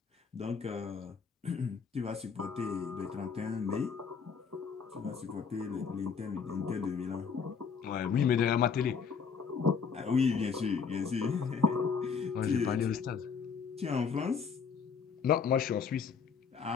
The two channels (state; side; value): quieter; right; 6.0 dB